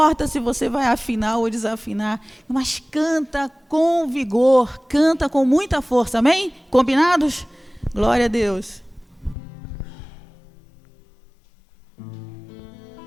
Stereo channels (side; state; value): right; drops out; at 9.3 s